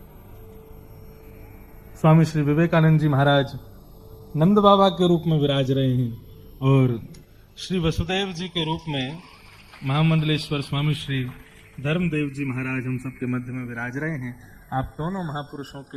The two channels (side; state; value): both; identical; correlation 1.00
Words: स्वामी श्री विवेकानंद जी महाराज नंद बाबा के रूप में विराज रहे हैं, और श्री वसुदेव जी के रूप में महामंडलेश्वर स्वामी श्री धर्मदेव जी महाराज हम सबके मध्य में विराज रहे हैं। आप दोनों महापुरुषों